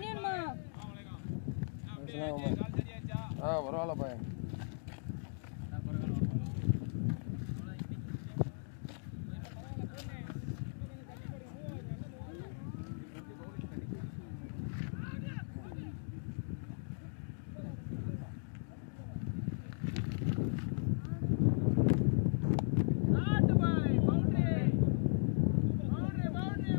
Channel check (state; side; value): silent; right; digital silence